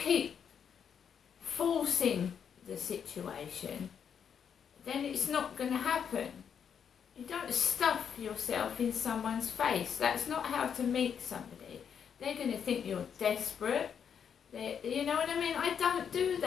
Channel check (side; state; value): right; quieter; 7.6 dB